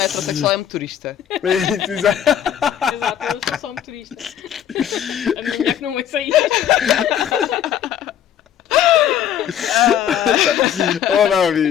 heterossexual, é motorista. Exato. Exato, eu sou só motorista. A minha mulher que não é sair. Oh não,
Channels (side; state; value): right; quieter; 9.9 dB